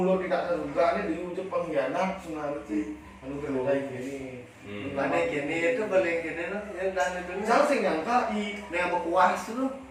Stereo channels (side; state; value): both; identical; correlation 1.00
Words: tidak terduga ini diucap pengkhianat sebenarnya sih anu kayak gini. Mana gini itu paling gini loh yang dan itu. Saya sih nyangka i yang berkuas tuh.